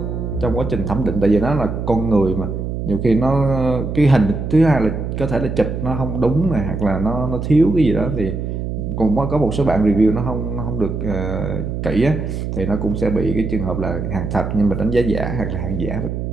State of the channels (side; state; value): right; noise; hum, 4 dB below the sound